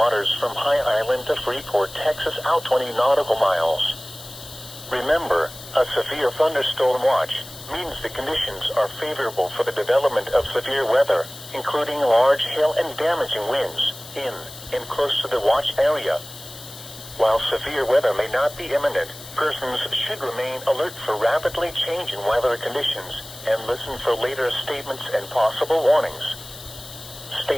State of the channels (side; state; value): left; noise; hiss, 15 dB below the sound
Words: from High Island to Freeport, Texas out 20 nautical miles. Remember, a severe thunderstorm watch means the conditions are favorable for the development of severe weather, including large hail and damaging winds, in and close to the watch area. While severe weather may not be imminent, persons should remain alert for rapidly changing weather conditions and listen for later statements and possible warnings.